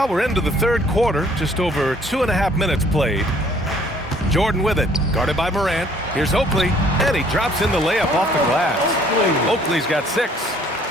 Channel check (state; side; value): normal; both; correlation 0.59